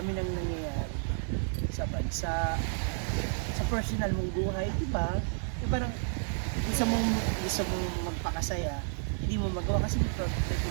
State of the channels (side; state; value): left; silent; 57 dB below the other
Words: nang nangyayari sa bansa, sa personal mong buhay, di ba? Yung parang gusto mong magpakasaya, hindi mo magawa kasi may